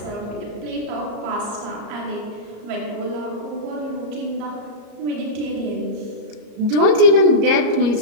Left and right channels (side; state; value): left; late; 34 ms